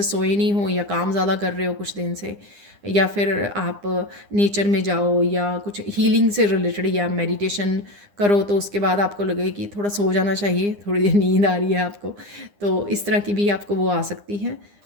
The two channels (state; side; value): late; left; 9.8 ms